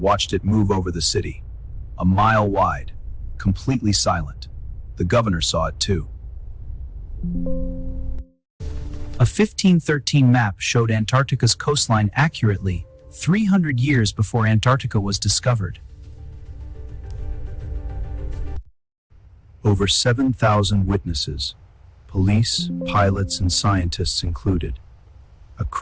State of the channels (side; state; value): both; identical; correlation 1.00